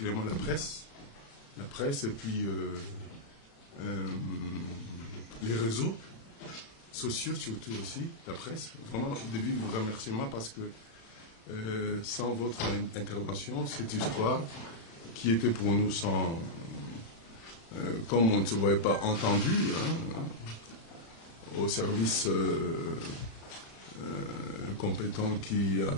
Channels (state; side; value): late; right; 35 ms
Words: la presse et puis les réseaux sociaux surtout aussi, la presse. Vraiment, au début, vous remerciez moi parce que sans votre intervention, cette histoire qui était pour nous sans... comme on ne se voyait pas entendu, au service compétent qui